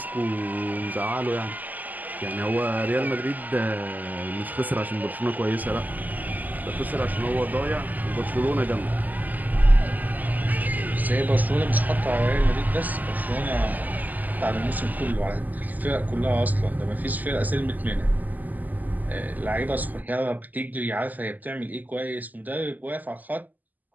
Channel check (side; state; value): left; late; 0.082 ms